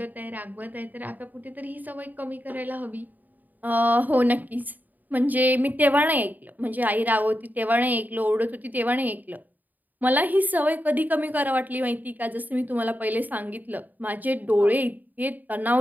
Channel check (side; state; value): left; late; 0.084 ms